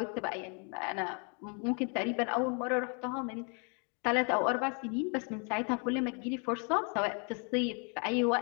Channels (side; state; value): right; quieter; 37.5 dB